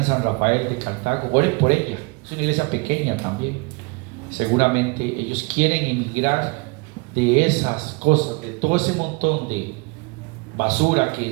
San Rafael de Cartago, oren por ella. Es una iglesia pequeña también. Seguramente ellos quieren emigrar de esas cosas, de todo ese montón de basura que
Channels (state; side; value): quieter; left; 29.2 dB